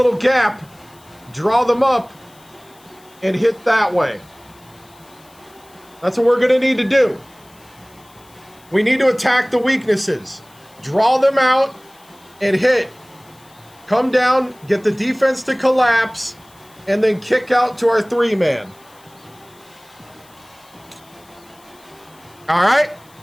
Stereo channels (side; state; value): left; noise; hiss, 28 dB below the sound